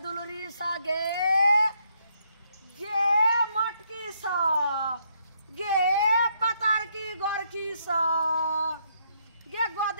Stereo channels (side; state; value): both; inverted; correlation -0.73